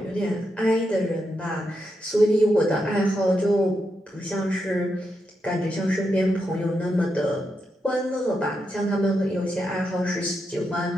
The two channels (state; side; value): normal; both; correlation 0.84